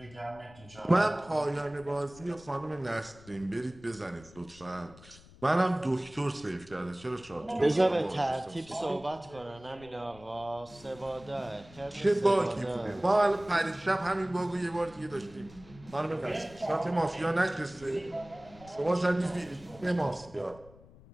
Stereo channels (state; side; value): noise; left; rumble, 22 dB below the sound